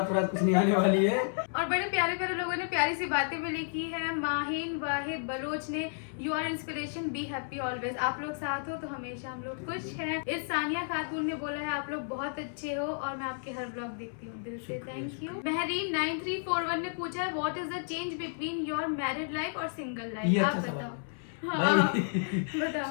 कुछ नहीं आने वाली है। और बड़े प्यारे प्यारे लोगों ने प्यारी सी बातें भी लिखी है। माहिन वाहिद बलोच ने you are inspiration, be happy always. आप लोग साथ हो तो हमेशा हम लोग खुश हैं। इस सानिया खातून ने बोला है आप लोग बहुत अच्छे हो और मैं आपके हर ब्लॉग देखती हूँ, दिल से थैंक यू। महरीन 9341 ने पूछा है what is the change between your married life और सिंगल लाइफ? ये आप अच्छा बताओ। सवाल हाँ, भाई, बताओ।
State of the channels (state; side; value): silent; right; 57 dB below the other